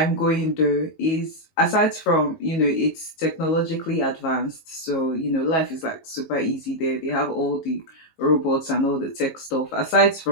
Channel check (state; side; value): late; right; 19 ms